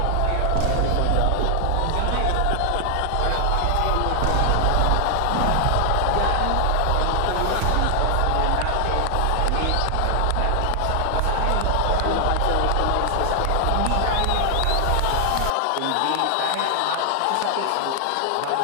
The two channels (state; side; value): different; both; correlation 0.00